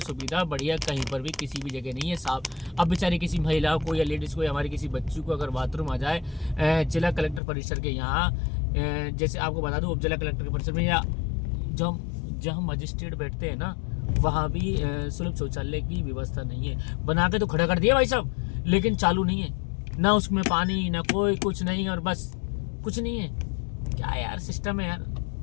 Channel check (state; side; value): drops out; right; at 7.4 s